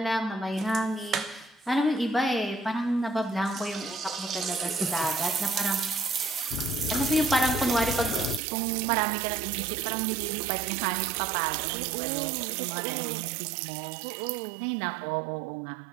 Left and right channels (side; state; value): left; drops out; at 8.4 s